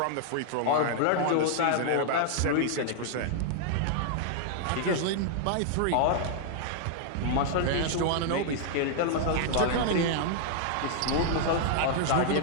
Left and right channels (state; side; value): different; both; correlation -0.01